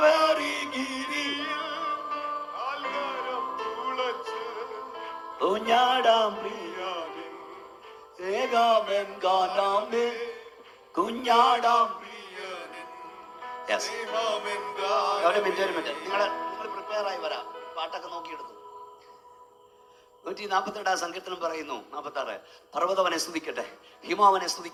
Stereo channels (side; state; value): both; identical; correlation 1.00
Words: ഗിരിയിൽ കുഞ്ഞാടാം പ്രിയാമേ, ഏകാമൻ ഗാനാമേ, കുഞ്ഞാടാം. ഒരു മിനിറ്റ് നിങ്ങൾ പ്രിപ്പയർ ആയി വരാം. പാട്ടൊക്കെ നോക്കിയെടുത്തു. 142 സങ്കീർത്തനം പറയുന്നു, 46, പർവ്വതവനെ സ്തുതിക്കട്ടെ, ഹിമാവനെ